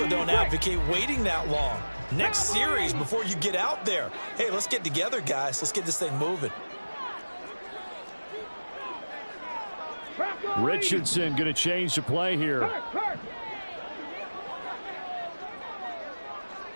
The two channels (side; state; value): both; inverted; correlation -1.00